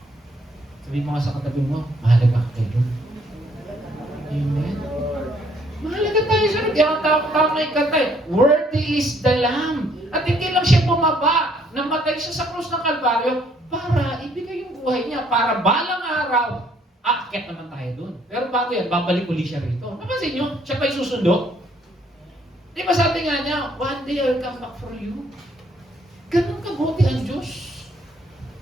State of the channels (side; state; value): both; normal; correlation 0.65